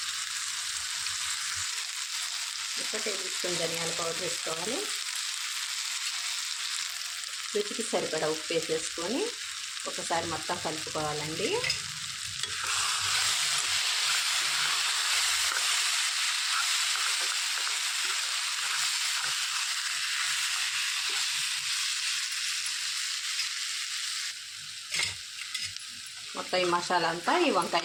1 టేబుల్ స్పూన్ ధనియాల పౌడర్ వేసుకోవాలి. రుచికి సరిపడా ఉప్పు వేసేసుకొని ఒకసారి మొత్తం కలుపుకోవాలండి. మొత్తం ఈ మసాలా అంతా ఈ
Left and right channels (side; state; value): both; identical; correlation 1.00